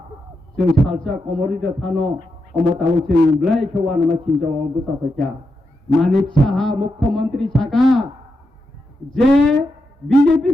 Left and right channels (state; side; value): normal; both; correlation 0.86